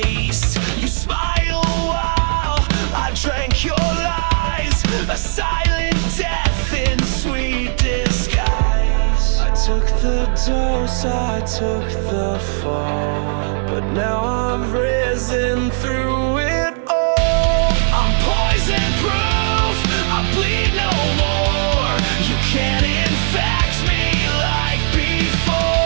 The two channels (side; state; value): left; silent; digital silence